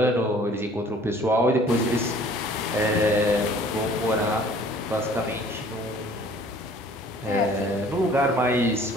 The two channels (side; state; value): both; normal; correlation 0.53